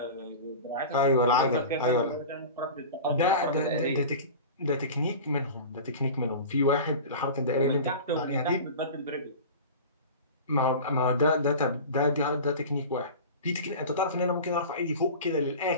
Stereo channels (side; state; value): both; inverted; correlation -0.34